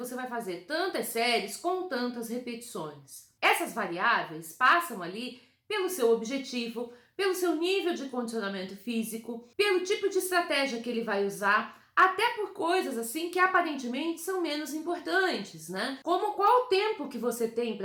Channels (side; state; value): both; identical; correlation 1.00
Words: vai fazer tantas séries com tantas repetições. Essas variáveis passam ali pelo seu objetivo, pelo seu nível de condicionamento físico, pelo tipo de estratégia que ele vai usar, até por coisas assim que aparentemente são menos importantes, né? Como qual o tempo que você tem